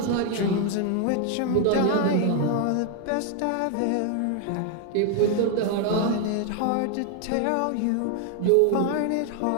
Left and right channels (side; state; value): both; different; correlation 0.00